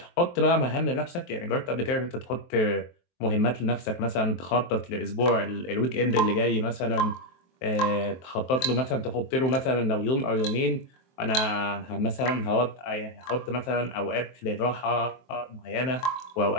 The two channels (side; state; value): right; late; 23 ms